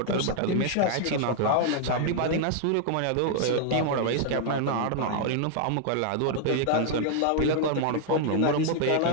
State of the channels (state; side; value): different; both; correlation 0.00